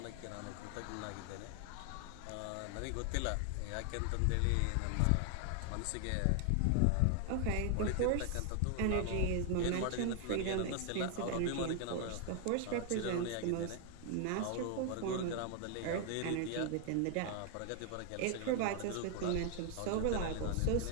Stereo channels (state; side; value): different; both; correlation 0.00